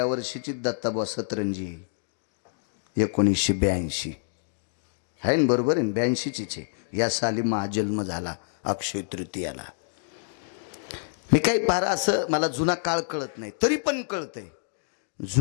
वर्षीची दत्ताबा सतरंजी 1982 आहे ना, बरोबर आहे 82चीच आहे. या साली महाजन्म झाला अक्षय तृतीयाला. मी काही फार असं मला जुना काळ कळत नाही, तरी पण कळतंय.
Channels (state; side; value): silent; right; digital silence